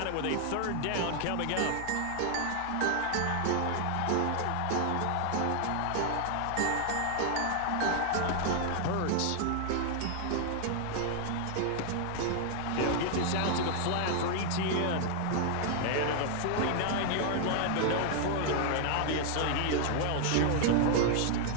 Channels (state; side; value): different; both; correlation 0.00